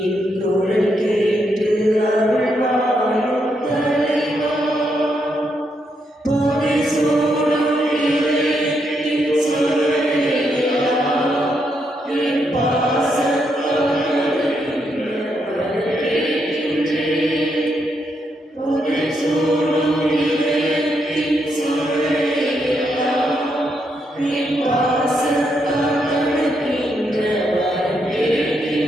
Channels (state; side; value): normal; both; correlation 0.79